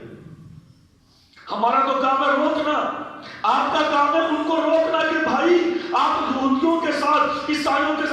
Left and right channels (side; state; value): both; identical; correlation 1.00